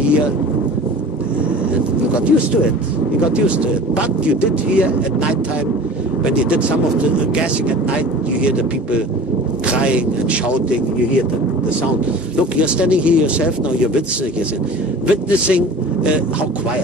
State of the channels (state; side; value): normal; both; correlation 0.40